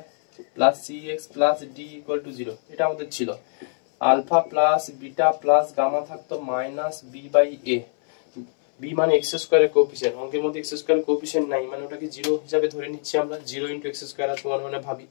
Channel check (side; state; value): right; silent; 63 dB below the other